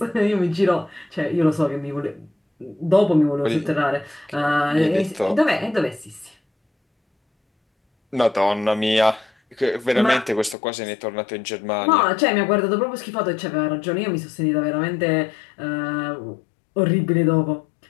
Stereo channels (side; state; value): right; drops out; at 10.6 s